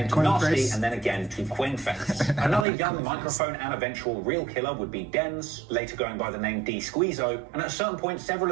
to Nasty and then again to Quingface. Another young microphone and eventual real killer would be Denz, later going by the name D Squeezo, and at a certain point, several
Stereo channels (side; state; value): left; drops out; at 2.7 s